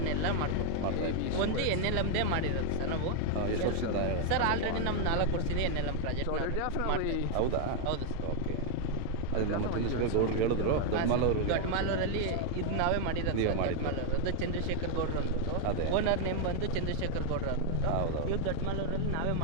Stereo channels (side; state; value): both; different; correlation 0.00